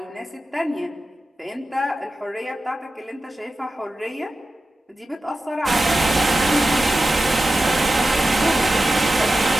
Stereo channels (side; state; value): both; normal; correlation 0.93